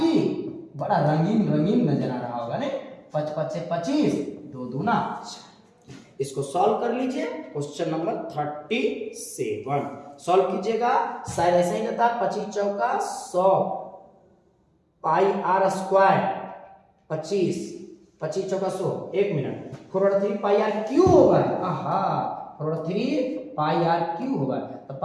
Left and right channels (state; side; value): identical; both; correlation 1.00